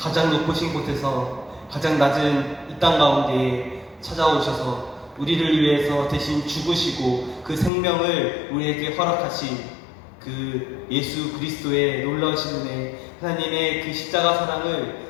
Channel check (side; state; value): right; drops out; at 7.7 s